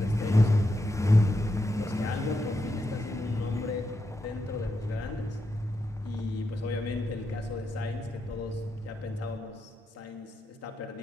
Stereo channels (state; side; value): normal; both; correlation 0.85